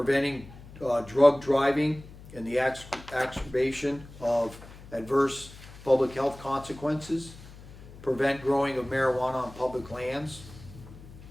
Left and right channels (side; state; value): left; noise; hum, 18 dB below the sound